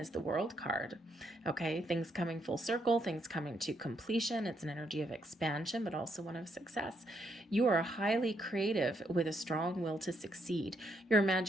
the World card. Okay, things coming full circle, things coming to completion. It's an energy of expansion, but also one of success. You are highly creative with a strong will to succeed. Your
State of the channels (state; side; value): normal; both; correlation 0.76